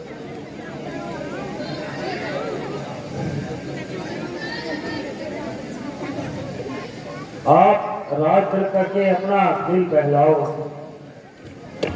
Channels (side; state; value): both; identical; correlation 1.00